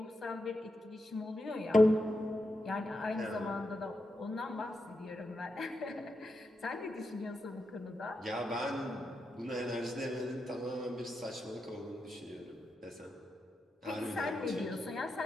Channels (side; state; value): both; normal; correlation 0.86